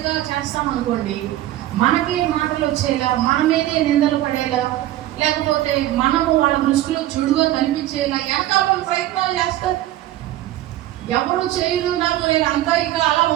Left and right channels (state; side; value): quieter; left; 14.4 dB